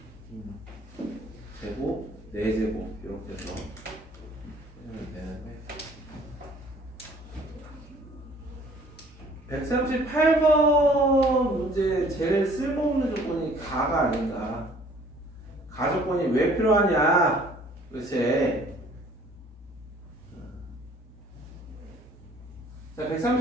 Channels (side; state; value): both; normal; correlation 0.55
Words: 제곱, 4제곱 이렇게 해서 하면 되는데 138번 문제 제일 쓸모없는 조건이 가가 아닌가. 가 조건이 왜 필요하냐 도대체. 자,